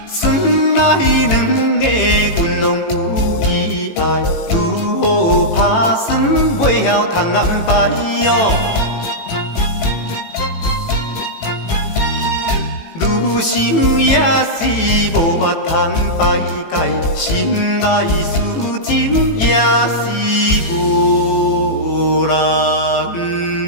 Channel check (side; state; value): right; late; 18 ms